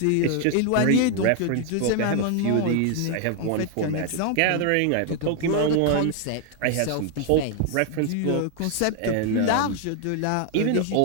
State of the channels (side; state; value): both; different; correlation 0.00